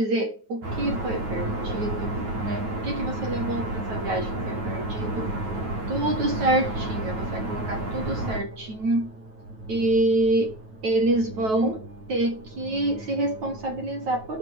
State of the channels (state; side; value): late; left; 9.2 ms